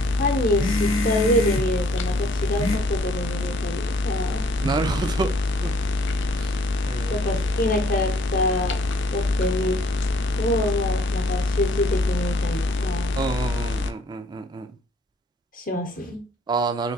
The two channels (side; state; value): both; normal; correlation 0.61